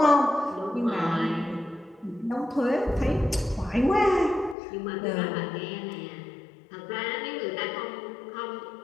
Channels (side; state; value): right; drops out; at 4.5 s